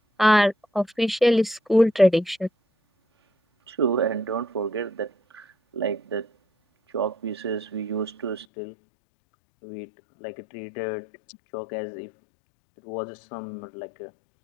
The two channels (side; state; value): right; drops out; at 8.5 s